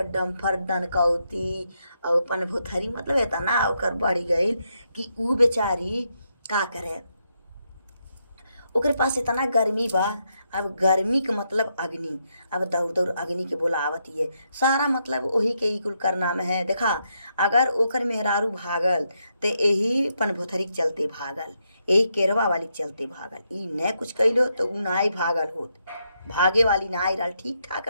डम्फर दनकौती और अपन भुथरी मतलब इतना ओकर बढ़ गई कि ऊ बेचारी का करे ओकरे पास इतना गर्मी बा। अब गर्मी के मतलब अग्नि अब दौड़ अग्नि के बोलावत है सारा मतलब वही के ई कुल करना में है। देखा अगर ओकर मेहरारू भागल तो यही पन भोथरी के चलते भागल यही केरवा वाली के चलते भागल ई न कुछ कैलो तो ऊ नाई भागल होत भागे वाली नाई रहा ठीक ठाक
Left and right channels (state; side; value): inverted; both; correlation -0.80